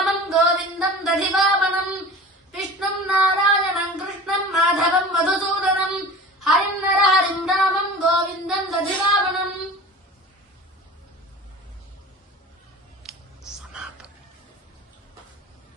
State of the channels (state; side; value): normal; both; correlation 0.38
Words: గోవిందం దధివామనం విష్ణుం నారాయణం కృష్ణం మాధవం మధుసూదనం హరిం నరహరిం రామం గోవిందం దధివామనం.